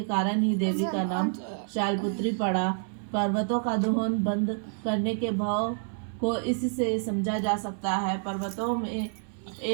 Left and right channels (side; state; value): left; silent; 59 dB below the other